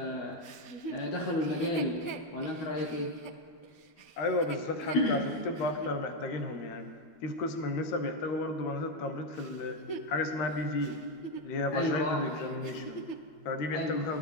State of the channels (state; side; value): late; right; 13 ms